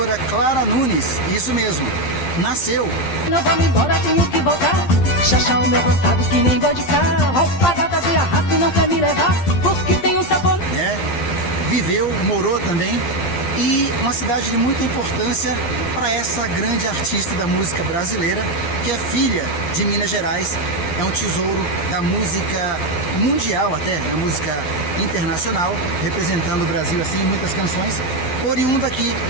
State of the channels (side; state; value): right; late; 12 ms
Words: Clara Nunes, isso mesmo, nasceu. Não vamos embora, tenho que voltar. Chachar o meu roçado que nem boi de carro. Roupa gata de arrasto não quer me levar, porque tem um sabor. Viveu, morou também. E uma cidade de muita importância para essa grande artista da música brasileira, que é filha de Minas Gerais, é um tesouro da música mundial até, da música internacional, representando o Brasil assim em muitas canções, oriunda aqui